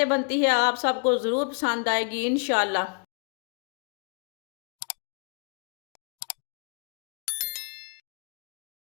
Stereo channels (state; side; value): quieter; right; 37.2 dB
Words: बनती है, आप सबको ज़रूर पसंद आएगी इंशाल्लाह।